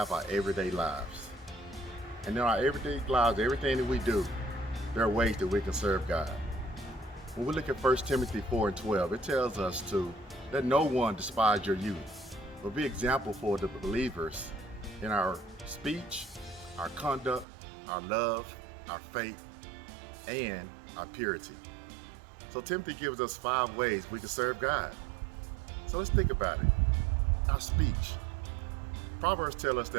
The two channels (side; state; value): left; drops out; at 17.4 s